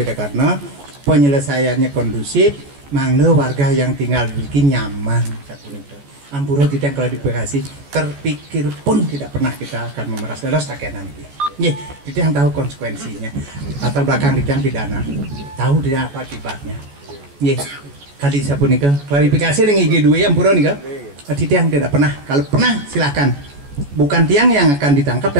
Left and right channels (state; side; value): late; left; 14 ms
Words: karena penyelesaiannya kondusif, mangga warga yang tinggal di Riki nyaman. Ampura tidak klarifikasi, terpikir pun tidak pernah kita akan memeras dalam sakenan ini. Nih, kita yang tahu konsekuensinya. Latar belakang kita yang pidana, tahu tidak apa akibatnya. Nih, kali saya pun nikah klarifikasi dengan IG2 yang pura nikah. Tidak yang tidak pernah. Kalau pernah silakan. Bukan tiang yang akan ditangkap,